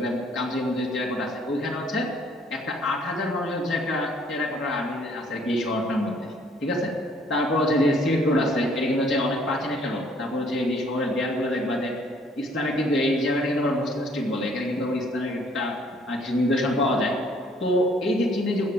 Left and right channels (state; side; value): normal; both; correlation 0.61